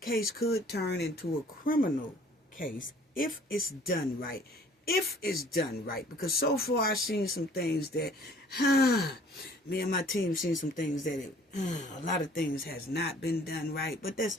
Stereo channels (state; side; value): normal; both; correlation 0.54